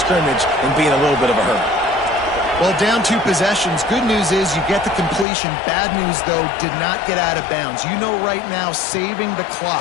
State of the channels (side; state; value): right; drops out; at 5.2 s